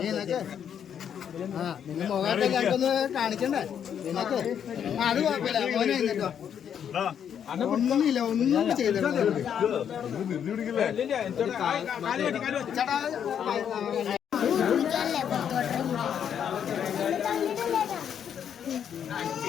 നിന്റെ മുഖത്തെ ഞങ്ങൾക്കൊന്ന് കാണിക്കണ്ടേ നിനക്ക്? അത് കുഴപ്പമില്ല, മോനെ എന്നിട്ടോ ഒന്നുമില്ല, ഒന്നും ചെയ്തിട്ടില്ല.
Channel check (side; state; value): right; quieter; 8.6 dB